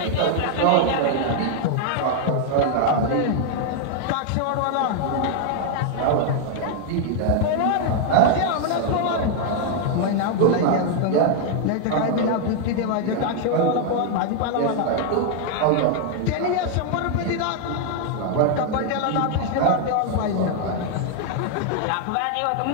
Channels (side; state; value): both; different; correlation 0.00